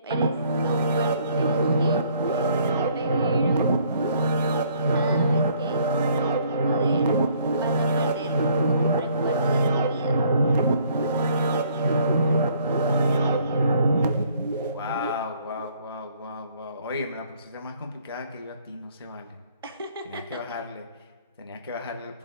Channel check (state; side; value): inverted; both; correlation -0.62